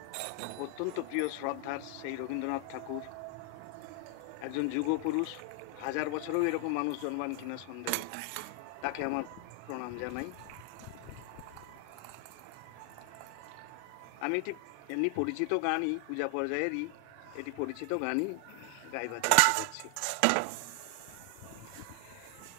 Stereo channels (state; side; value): different; both; correlation 0.00